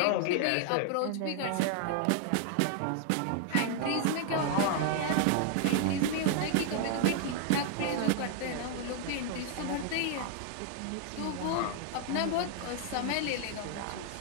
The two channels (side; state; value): both; different; correlation 0.00